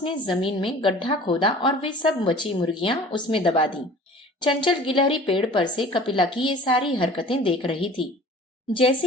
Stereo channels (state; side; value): normal; both; correlation 0.45